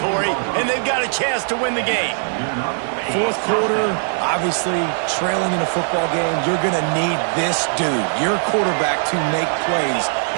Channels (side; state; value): left; silent; 59 dB below the other